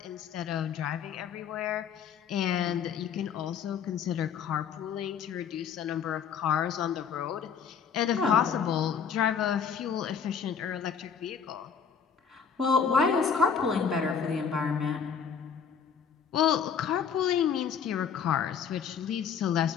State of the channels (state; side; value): quieter; right; 7.0 dB